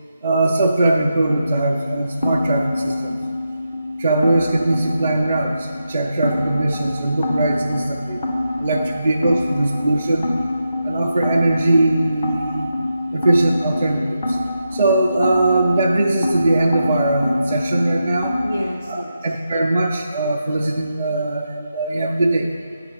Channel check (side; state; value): both; inverted; correlation -0.86